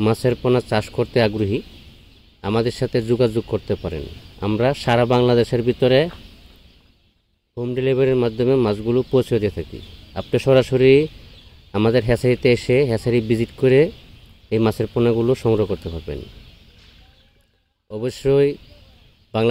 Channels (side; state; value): both; identical; correlation 1.00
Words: মাছের পোনা চাষ করতে আগ্রহী, আমাদের সাথে যোগাযোগ করতে পারেন। আমরা সারা বাংলাদেশের ভিতরে হোম ডেলিভারির মাধ্যমে মাছগুলো পৌঁছে দিয়ে থাকি। আপনি সরাসরি আমাদের হ্যাচারিতে এসে হ্যাচারি ভিজিট করে এই মাছের পোনাগুলো সংগ্রহ করতে পারবেন। অবশ্যই